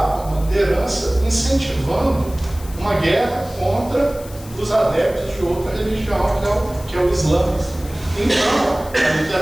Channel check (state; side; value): noise; left; hiss, 19 dB below the sound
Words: uma liderança, incentivando uma guerra contra os adeptos de outra religião, que é o Islã. Então, a